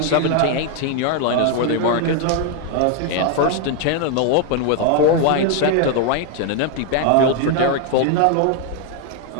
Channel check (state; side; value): different; both; correlation 0.00